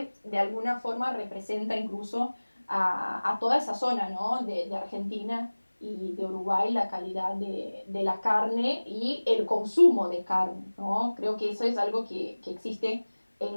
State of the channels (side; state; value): both; inverted; correlation -1.00